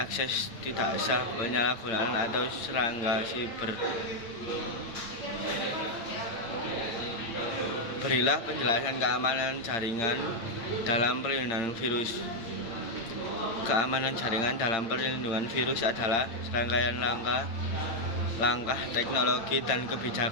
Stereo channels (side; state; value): right; late; 8.8 ms